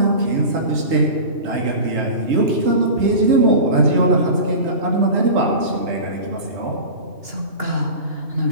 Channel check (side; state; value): left; late; 3.3 ms